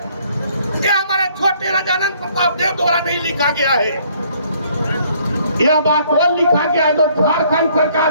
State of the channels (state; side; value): inverted; both; correlation -0.63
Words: यह हमारे छोटे राजानंद प्रताप देव द्वारा नहीं लिखा गया है। यह बात और लिखा गया है जो झारखंड